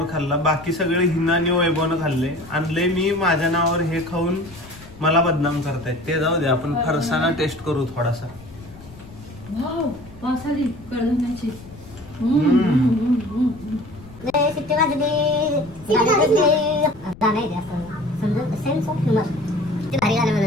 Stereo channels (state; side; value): noise; left; rumble, 19 dB below the sound